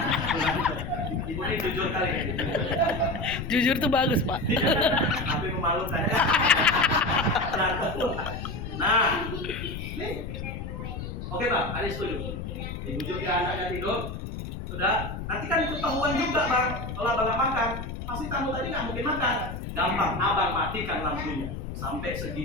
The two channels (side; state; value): left; noise; rumble, 7 dB below the sound